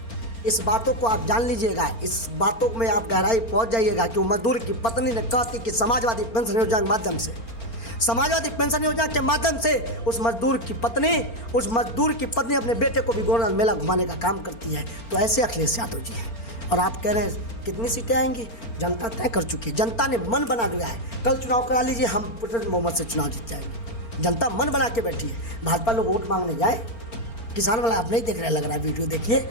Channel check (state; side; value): late; right; 4.4 ms